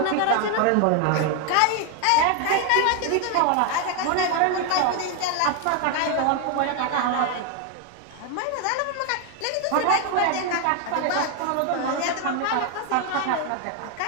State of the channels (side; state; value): both; different; correlation 0.01